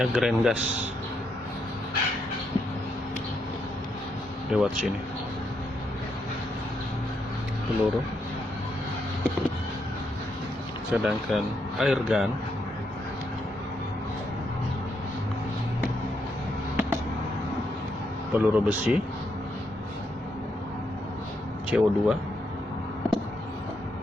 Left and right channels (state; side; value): normal; both; correlation 0.79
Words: grain gas lewat sini. Peluru, sedangkan air gun peluru besi, CO2,